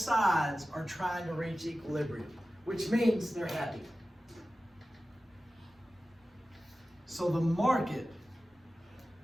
are trying to reach equilibrium, which means they're happy. So the market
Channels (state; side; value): normal; both; correlation 0.95